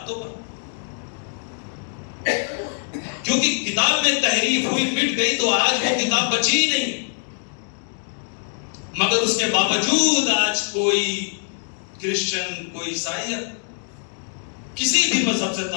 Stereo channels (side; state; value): right; silent; 55 dB below the other